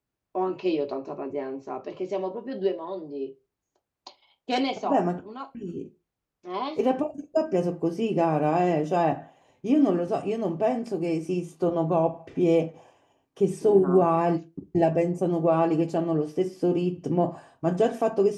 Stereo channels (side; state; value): both; identical; correlation 1.00